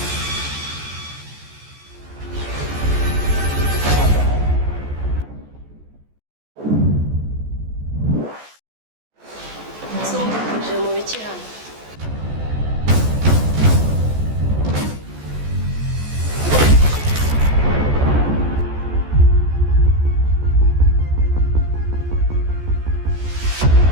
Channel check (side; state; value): left; late; 14 ms